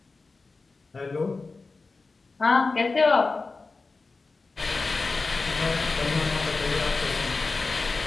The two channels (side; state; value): right; quieter; 3.9 dB